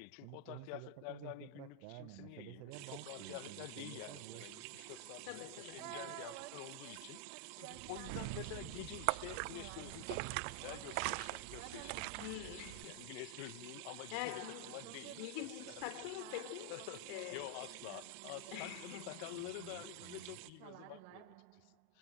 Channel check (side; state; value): both; different; correlation 0.00